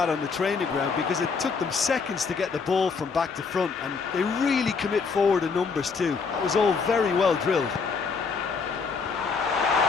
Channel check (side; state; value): right; quieter; 5.1 dB